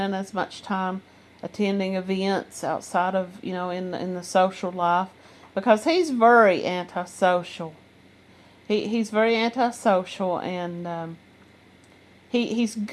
as much time attending events outside of, in the social life, because he's very antisocial. He's very antisocial, and he's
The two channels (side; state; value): both; identical; correlation 1.00